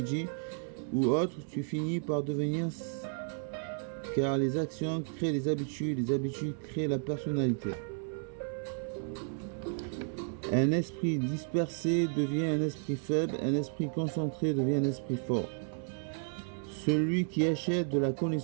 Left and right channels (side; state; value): left; silent; 56 dB below the other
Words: ou autre, tu finis par devenir, car les actions créent les habitudes créent la personnalité. Un esprit dispersé devient un esprit faible, un esprit concentré devient un esprit fort. Celui qui achète de la